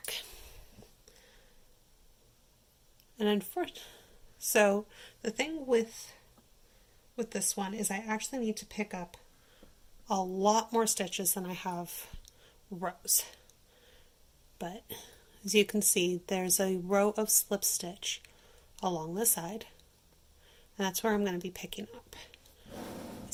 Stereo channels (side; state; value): both; identical; correlation 1.00